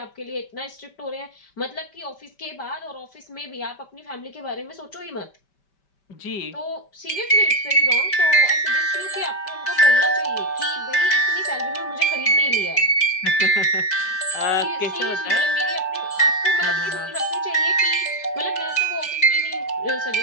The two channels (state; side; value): late; right; 5.1 ms